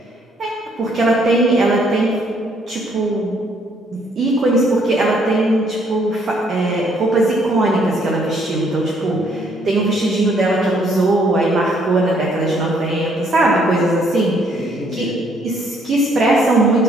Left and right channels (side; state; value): both; normal; correlation 0.67